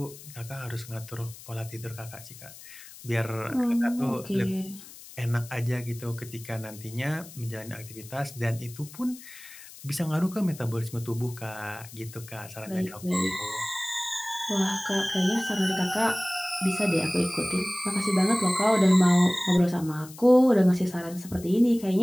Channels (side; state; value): left; noise; hiss, 17 dB below the sound